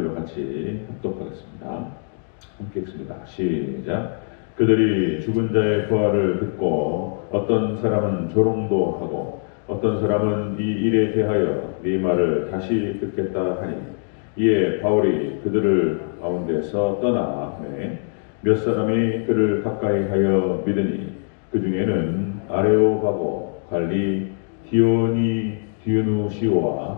같이 합독하겠습니다. 함께 읽습니다. 시작. 그들이 죽은 자의 부활을 듣고 어떤 사람은 조롱도 하고 어떤 사람은 이 일에 대하여 네 말을 다시 듣겠다 하니 이에 바울이 그들을 가운데서 떠나 몇 사람이 그를 가까이 하여 믿으니 그 중에는 아레오바고 관리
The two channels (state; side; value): silent; right; 56 dB below the other